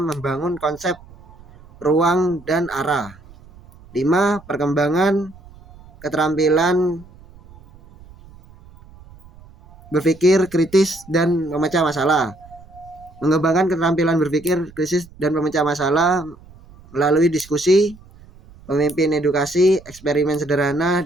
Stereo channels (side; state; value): right; noise; rumble, 23 dB below the sound